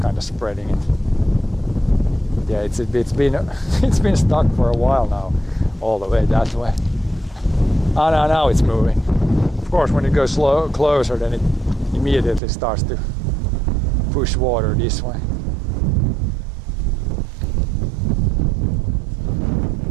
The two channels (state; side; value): drops out; left; at 12.4 s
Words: of spreading it. Yeah, it's been it's been stuck for a while now, all the way that way. Oh, no, now it's moving. Of course, when it goes closer, then it immediately starts to push water this way.